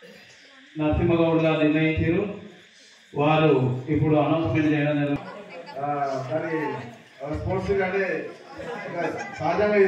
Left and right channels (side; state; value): both; identical; correlation 1.00